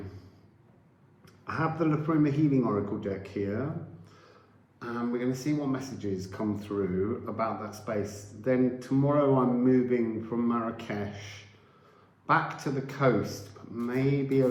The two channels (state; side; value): identical; both; correlation 1.00